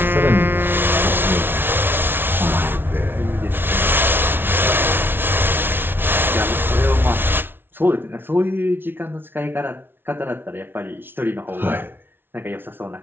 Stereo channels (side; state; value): left; late; 0.11 ms